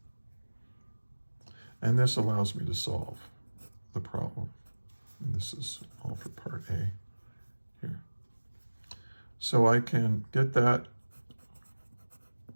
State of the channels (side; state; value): both; inverted; correlation -1.00